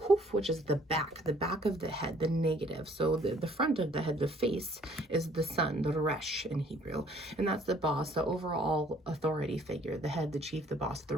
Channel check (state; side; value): normal; both; correlation 0.59